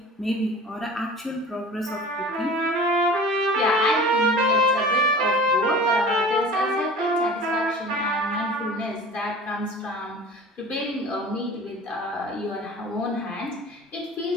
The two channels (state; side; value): normal; both; correlation 0.40